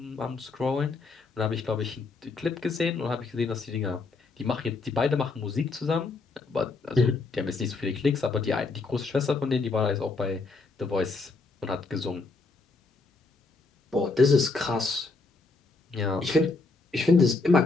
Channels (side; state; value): right; quieter; 3.9 dB